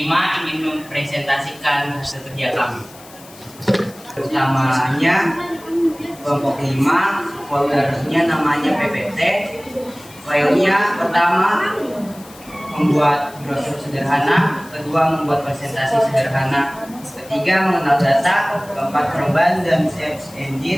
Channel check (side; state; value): left; noise; hiss, 21 dB below the sound